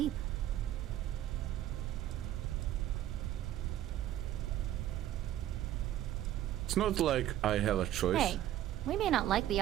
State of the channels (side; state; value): left; quieter; 12.7 dB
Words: It's not like I have a choice. Hey, we may not like the